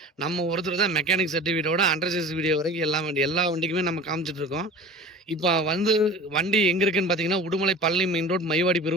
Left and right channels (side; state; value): both; normal; correlation 0.39